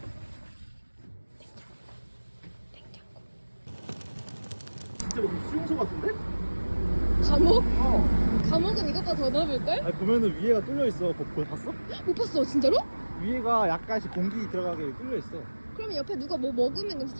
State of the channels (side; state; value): both; inverted; correlation -1.00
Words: 냉장고. 진짜 무슨 수용소 같은데? 감옥? 감옥은 이것보다 더 넓을걸? 아니 보면은 위에가 뚫려 있어. 그거 봤어? 못 봤어 진짜로? 위에가 약간씩 공기 들어가게 뚫려 있어. 그러면 옆에 누가 뭐 먹으면 냄새